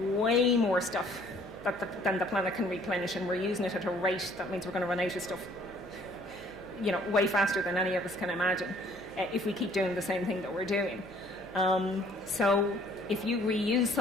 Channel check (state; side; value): noise; right; hum, 21 dB below the sound